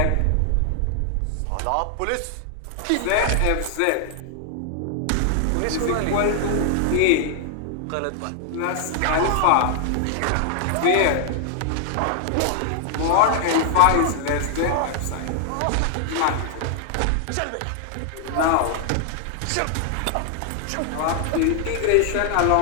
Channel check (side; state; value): both; different; correlation -0.01